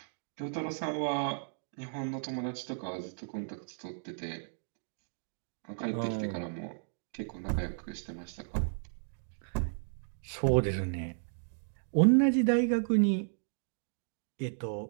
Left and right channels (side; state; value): left; silent; digital silence